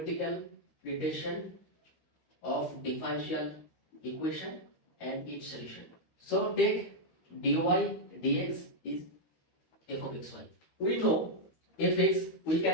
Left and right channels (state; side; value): late; right; 13 ms